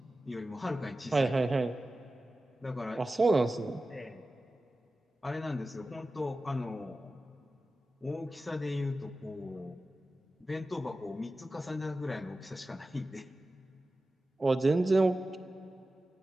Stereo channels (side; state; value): both; normal; correlation 0.94